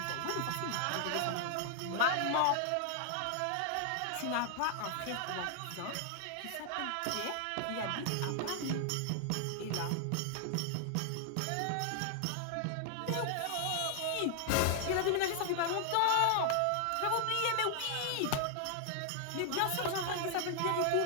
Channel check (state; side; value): different; both; correlation 0.00